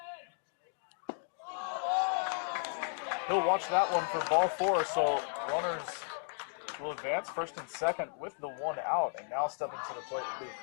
He'll watch that one for ball 4, so runners will advance first and second with the 1 out, and now stepping to the plate will be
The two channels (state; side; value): silent; right; 55 dB below the other